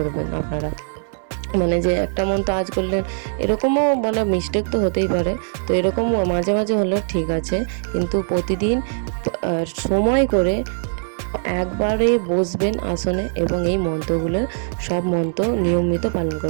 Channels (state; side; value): silent; left; 61 dB below the other